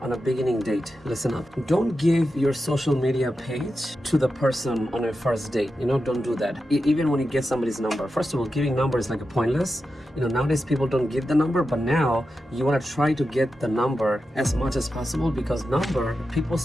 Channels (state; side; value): normal; both; correlation 0.90